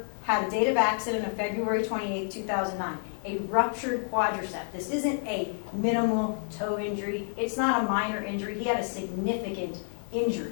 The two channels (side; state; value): right; silent; digital silence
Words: had a date of accident of February 28, 2009, a ruptured quadricep. This isn't a minimal toe injury. It's not a minor injury. He had a significant